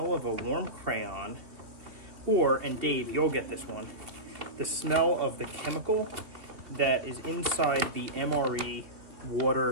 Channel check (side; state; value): left; late; 2.7 ms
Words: of a warm crayon or, and Dave, you'll get this one, the smell of the chemical that is inside the MRE